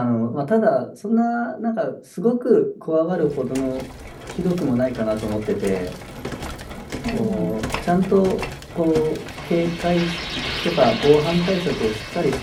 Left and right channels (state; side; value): identical; both; correlation 1.00